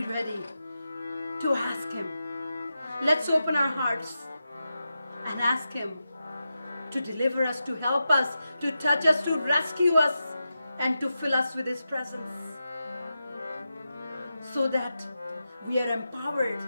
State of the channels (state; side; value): inverted; both; correlation -0.90